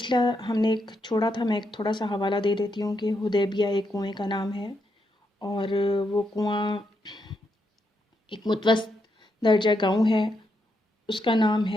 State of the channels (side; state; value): both; normal; correlation 0.81